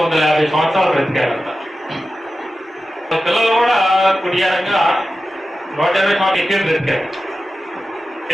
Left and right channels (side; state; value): both; normal; correlation 0.93